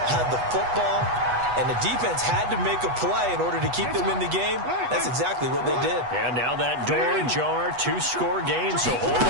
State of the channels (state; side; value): late; left; 8.2 ms